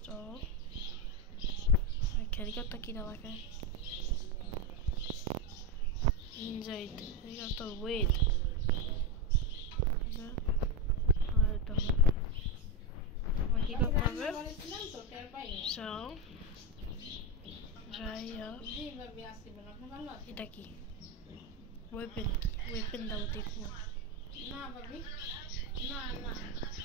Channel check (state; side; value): normal; both; correlation 0.08